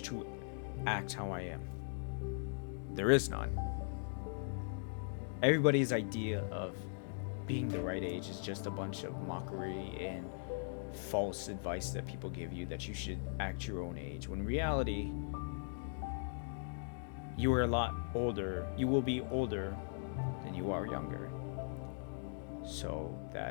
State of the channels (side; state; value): right; silent; digital silence